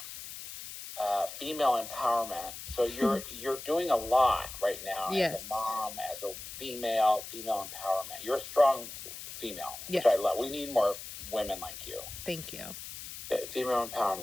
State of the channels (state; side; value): noise; left; hiss, 11 dB below the sound